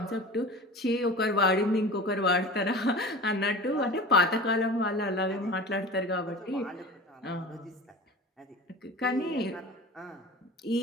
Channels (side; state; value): both; normal; correlation 0.36